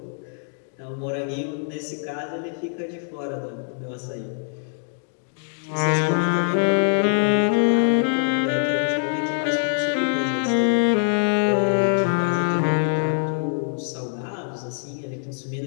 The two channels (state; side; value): silent; right; digital silence